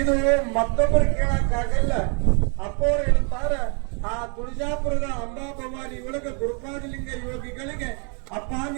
ಮತ್ತೊಬ್ಬರು ಕೇಳಕ್ಕಾಗಲ್ಲ. ಅಪ್ಪವ್ರು ಹೇಳ್ತಾರ, ಆ ತುಳಜಾಪುರದ ಅಂಬಾ ಭವಾನಿ ಒಳಗ ಗುರುಪಾದಲಿಂಗ ಯೋಗಿಗಳಿಗೆ ಅಪ್ಪ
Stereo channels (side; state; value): left; quieter; 36.8 dB